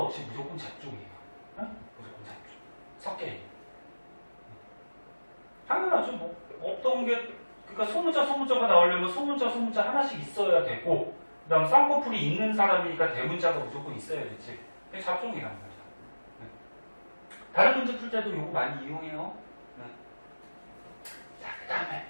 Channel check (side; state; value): both; inverted; correlation -1.00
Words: 없이 무조건 잡종이에요. 응? 무조건 잡종. 섞여있는. 당연하죠. 뭐 없던 게, 그러니까 소문자가 나오려면 소문자 하나씩 있어야 되고, 그 다음 쌍꺼풀이 있는 사람이니까 대문자가 무조건 있어야 되지. 그게 잡종이란 말이야. 다른 문제 풀 때도 이거 많이 이용해요. 자, 그 다음에